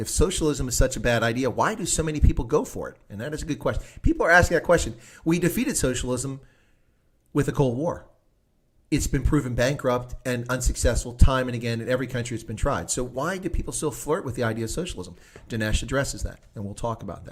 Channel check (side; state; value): both; identical; correlation 1.00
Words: socialism is such a bad idea, why do so many people go for it? And that is a good question. People are asking that question. We defeated socialism with the Cold War. It's been proven bankrupt and unsuccessful time and again in every country it's been tried. So why do people still flirt with the idea of socialism? Dinesh addresses that, and we'll talk about